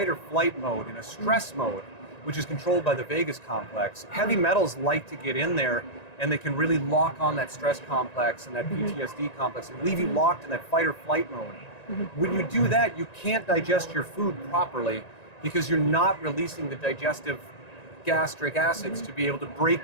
or flight mode, in a stress mode, which is controlled by the vagus complex, heavy metals like to get in there and they can really lock on that stress complex and that PTSD complex and leave you locked in that fight or flight mode. When you do that, you can't digest your food properly because you're not releasing the digestive gastric acids to be able to break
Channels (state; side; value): late; right; 1.9 ms